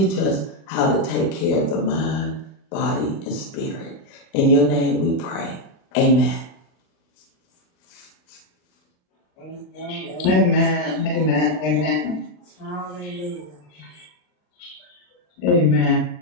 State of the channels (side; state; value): right; late; 39 ms